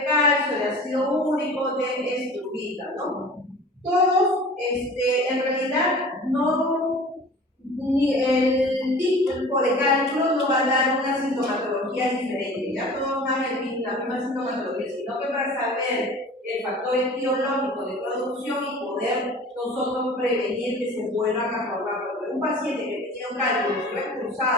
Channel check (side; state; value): both; normal; correlation 0.42